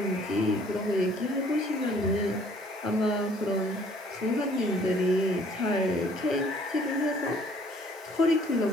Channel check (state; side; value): normal; both; correlation 0.59